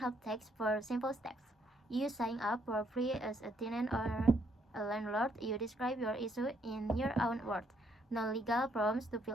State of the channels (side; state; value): both; normal; correlation 0.71